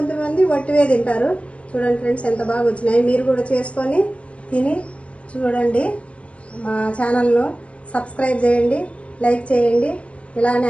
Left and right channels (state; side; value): late; right; 0.062 ms